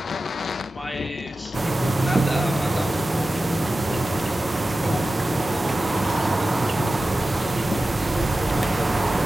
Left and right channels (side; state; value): both; normal; correlation 0.94